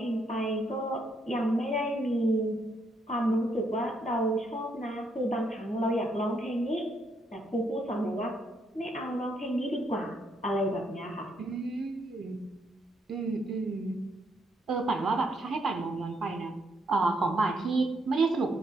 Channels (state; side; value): normal; both; correlation 0.74